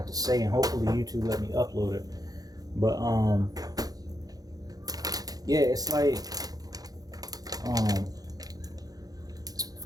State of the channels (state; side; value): late; left; 0.18 ms